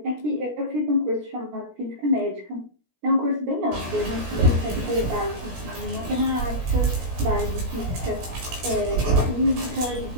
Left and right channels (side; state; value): left; late; 16 ms